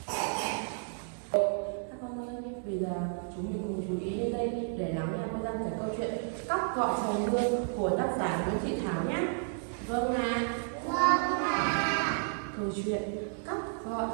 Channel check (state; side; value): silent; left; 56 dB below the other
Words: Các con ơi, bây giờ chúng mình cùng chú ý lên đây để lắng nghe cô Giang kể câu chuyện Cóc gọi trời mưa của tác giả Nguyễn Thị Thảo nhé. Vâng ạ. Câu chuyện Cóc gọi